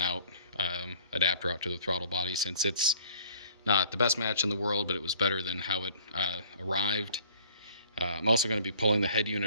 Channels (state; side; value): inverted; both; correlation -0.54